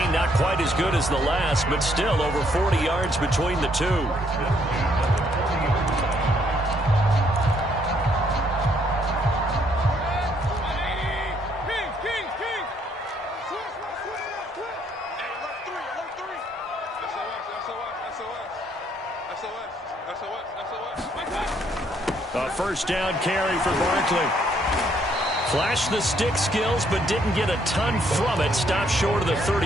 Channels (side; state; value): both; normal; correlation 0.69